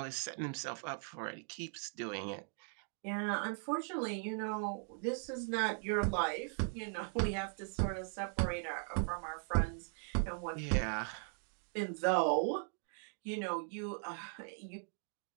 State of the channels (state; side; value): silent; left; 52 dB below the other